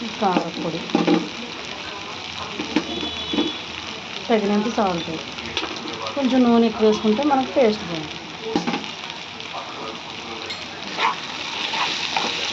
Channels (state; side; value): identical; both; correlation 1.00